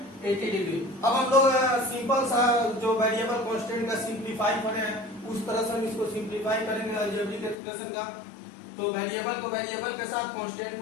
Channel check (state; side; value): drops out; right; at 7.6 s